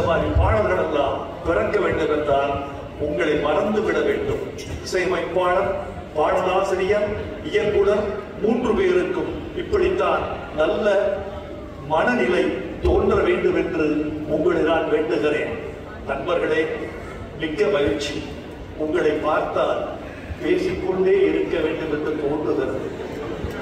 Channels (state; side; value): identical; both; correlation 1.00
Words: மாதிரி பாடல்கள் எல்லாம் பிறக்க வேண்டும் என்றால் உங்களை மறந்துவிட வேண்டும். இசையமைப்பாளர், பாடலாசிரியர், இயக்குனர் 3 பேருக்கும் இப்படித்தான் நல்ல மனநிலை தோன்ற வேண்டும் என்று உங்களை நான் வேண்டுகிறேன். நண்பர்களே, மிக்க மகிழ்ச்சி. உங்களை பார்த்தால் பேசிக்கொண்டே இருக்க வேண்டும் என்று தோன்றுகிறது.